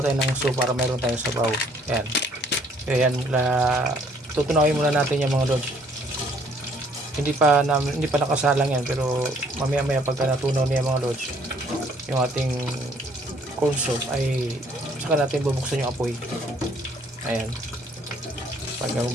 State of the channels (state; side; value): normal; both; correlation 0.63